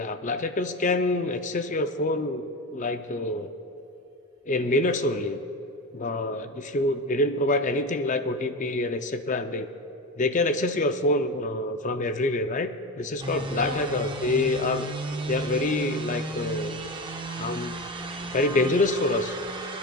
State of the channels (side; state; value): both; normal; correlation 0.22